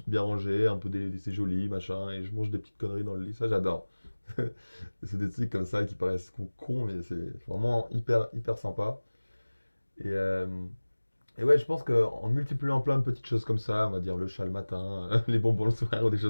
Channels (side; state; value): both; inverted; correlation -1.00